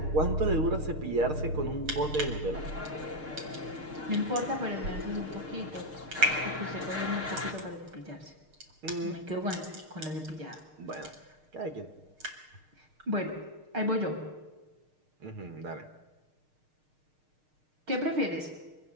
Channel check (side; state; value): left; late; 6.5 ms